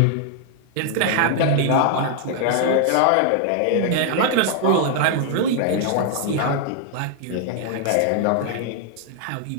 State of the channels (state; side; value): different; both; correlation 0.00